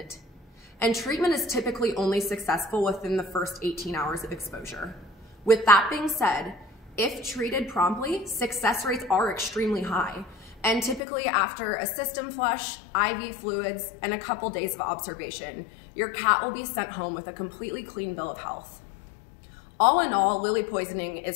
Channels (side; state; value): right; drops out; at 11.0 s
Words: And treatment is typically only successful within the first 18 hours of exposure. With that being said, if treated promptly, success rates are extremely high, and typically after a system flush, IV fluids, and a couple days of observation, your cat will be sent home with a completely clean bill of health. All in all, lily poisoning